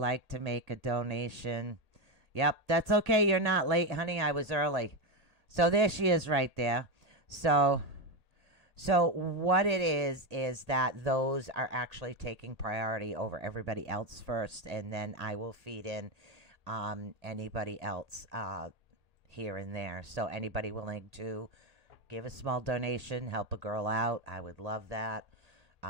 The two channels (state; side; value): late; left; 1.8 ms